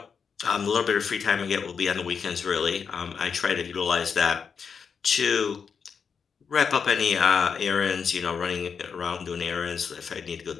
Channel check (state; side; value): quieter; right; 6.3 dB